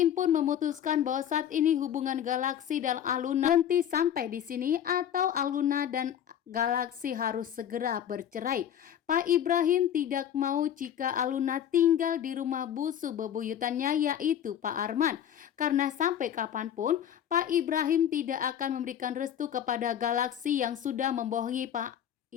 pun memutuskan bahwa saat ini hubungan Galaksi dan Aluna berhenti sampai di sini atau Aluna dan Galaksi harus segera bercerai. Pak Ibrahim tidak mau jika Aluna tinggal di rumah busu bebuyutannya yaitu Pak Arman. Karena sampai kapanpun Pak Ibrahim tidak akan memberikan restu kepada Galaksi yang sudah membohongi Pak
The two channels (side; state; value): right; quieter; 9.8 dB